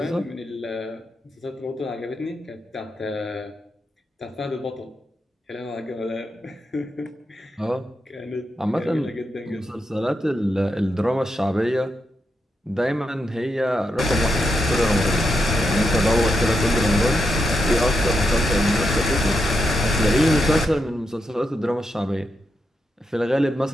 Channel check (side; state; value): both; normal; correlation 0.84